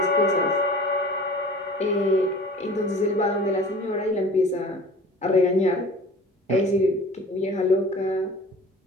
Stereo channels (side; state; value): both; normal; correlation 0.43